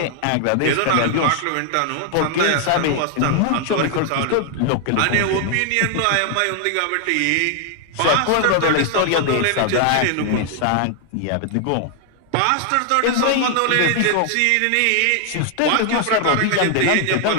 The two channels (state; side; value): different; both; correlation 0.00